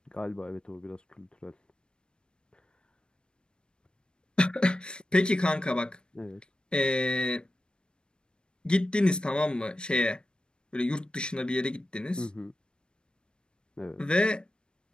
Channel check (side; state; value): right; late; 0.052 ms